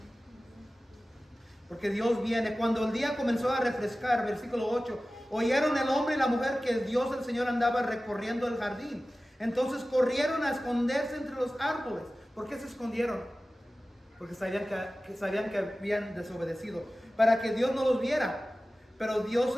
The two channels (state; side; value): normal; both; correlation 0.96